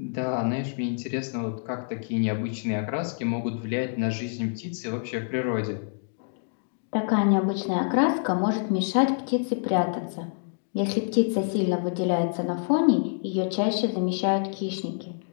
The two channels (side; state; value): right; silent; digital silence